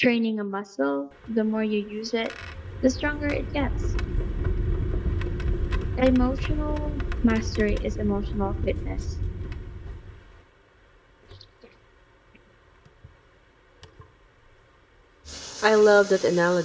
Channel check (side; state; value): both; identical; correlation 1.00